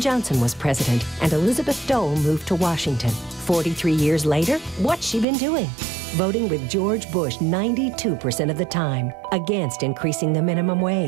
was president, and Elizabeth Dole moved to Washington. 43 years later, what's she been doing? Voting with George Bush 92% of the time against increasing the minimum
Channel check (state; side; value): drops out; left; at 5.2 s